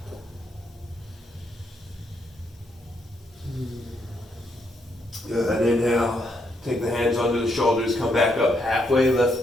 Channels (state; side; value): normal; both; correlation 0.76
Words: Good, inhale, take the hands under the shoulders, come back up halfway, lift.